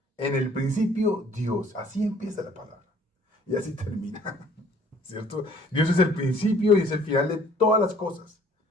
principio Dios. Así empieza la palabra. Y así termina, ¿cierto? Dios es el principio y es el final de todas las cosas.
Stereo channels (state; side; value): normal; both; correlation 0.56